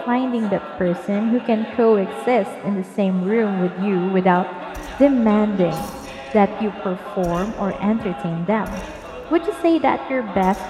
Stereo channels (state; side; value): identical; both; correlation 1.00